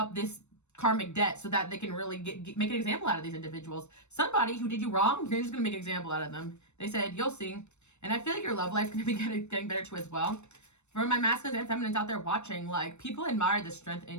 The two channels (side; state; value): right; late; 0.82 ms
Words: this karmic debt so that they can really make an example out of these individuals. Somebody who did you wrong, you're just going to make an example out of them. They said, you'll see. And I feel like your love life's going to be getting better too as well. For my masculines and feminines out there watching, like, people admire the strength